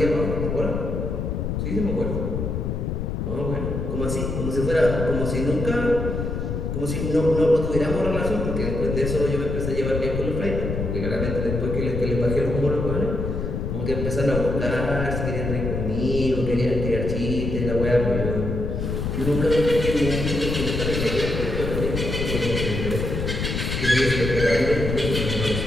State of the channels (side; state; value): left; noise; rumble, 2 dB below the sound